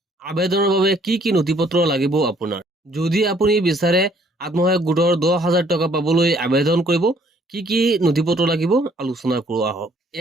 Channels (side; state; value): both; normal; correlation 0.62